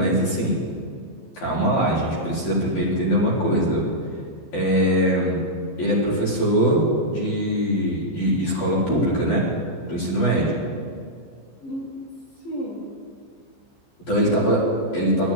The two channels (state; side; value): late; right; 15 ms